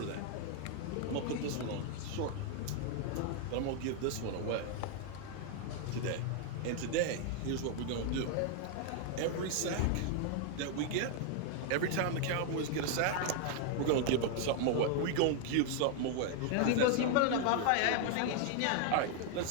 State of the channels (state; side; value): different; both; correlation 0.00